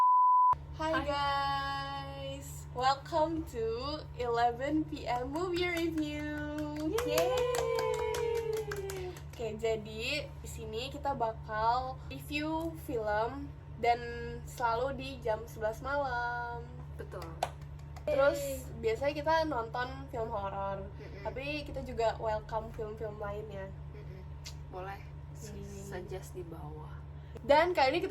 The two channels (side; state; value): both; identical; correlation 1.00